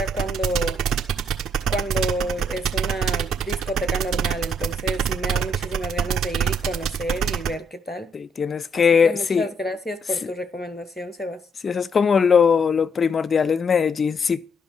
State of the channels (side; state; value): both; normal; correlation 0.72